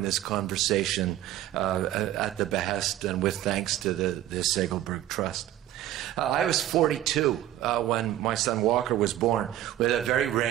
this conversation at the behest and with thanks to the Segelberg Trust. I was 42 when my son Walker was born with a very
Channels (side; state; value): left; quieter; 13.2 dB